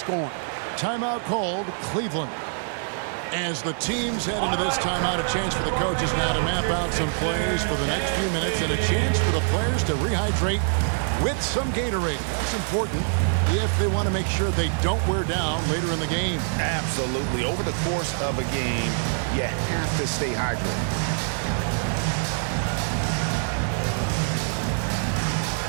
Timeout called, Cleveland. As the teams head into this timeout, a chance for the coaches now to map out some plays for the next few minutes and a chance for the players to rehydrate with some Gatorade. That's important if they want to make sure they don't wear down later in the game. Absolutely. Over the course of a game, you have to stay hydrated.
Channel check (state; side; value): silent; left; digital silence